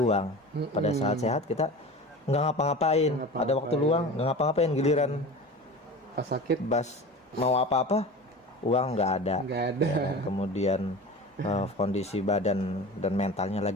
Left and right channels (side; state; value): both; normal; correlation 0.34